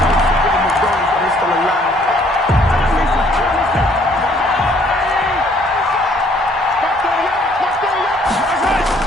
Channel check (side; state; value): both; normal; correlation 0.62